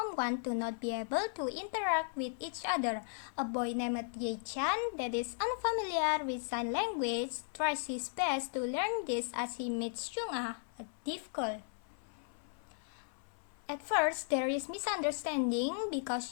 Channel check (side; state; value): right; silent; 54 dB below the other